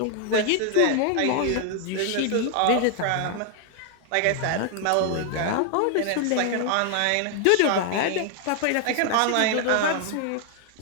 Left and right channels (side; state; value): both; different; correlation 0.00